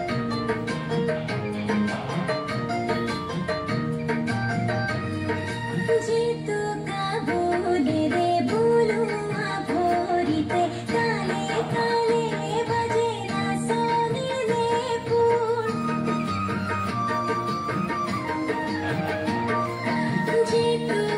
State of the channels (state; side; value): identical; both; correlation 1.00